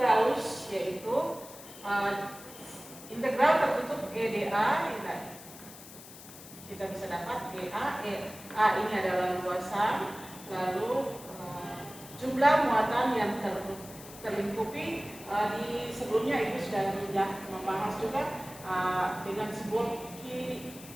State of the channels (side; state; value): left; noise; hiss, 16 dB below the sound